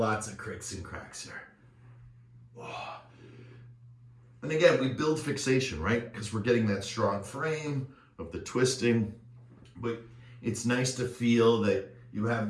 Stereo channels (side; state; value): both; identical; correlation 1.00